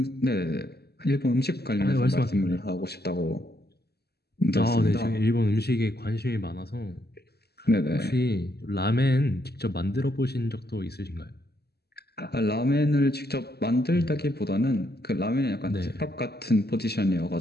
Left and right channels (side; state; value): right; late; 0.47 ms